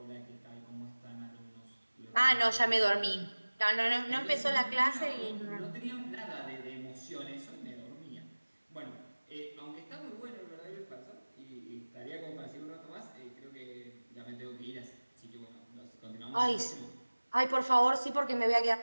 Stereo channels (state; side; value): inverted; both; correlation -1.00